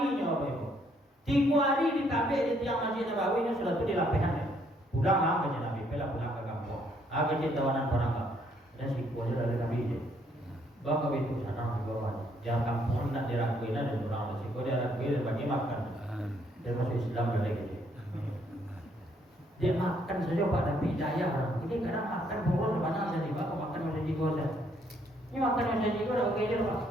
nyo apa 3 hari di kabel di tiang Masjid Nabawi nyo sudah tu dilapihan. Pulang lah ke Nabi, pulang ke kampung. Kerja tawanan perang dan si kuasa dari Nabi je. Bawa ke itu sana di bawah. Jangan kampung nak diraguin dan orang resiko dia raguin bagi makan. Dia masuk Islam dari gitu. Dia makan saja pada hidayah orang. Ini kadang makan boros banyak jadi pak makan macam jiwa saja. Ini makan macam jiwa dah okey je pak.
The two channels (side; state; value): both; normal; correlation 0.69